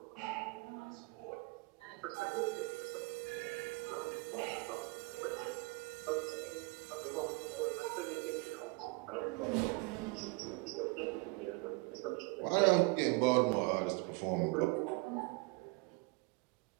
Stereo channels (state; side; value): quieter; left; 27.6 dB